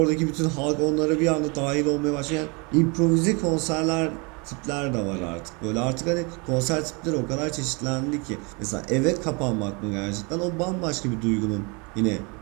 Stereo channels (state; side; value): quieter; left; 30.7 dB